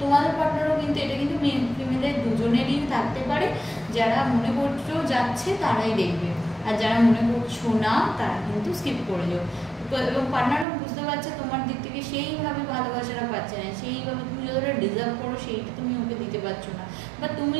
তোমাদের পার্টনারও কিন্তু, এটা কিন্তু ফিমেলের দুজনেরই থাকতে পারে, যারা মনে করছো যাচ্ছে তারাই দেখবে, আর যারা মনে করছো না তারা কিন্তু স্কিপ করে যাও। এবং পার্টনারও বুঝতে পারছে তোমার দিক থেকে সেইভাবে ভালোবাসাটা পাচ্ছে না, সেইভাবে তুমি যতটা ডিজার্ভ করো সেইটা তুমি ওকে দিতে পারছো না, বা তুমি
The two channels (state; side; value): drops out; left; at 10.7 s